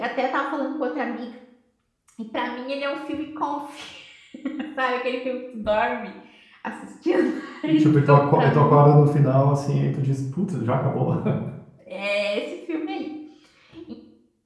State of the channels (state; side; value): identical; both; correlation 1.00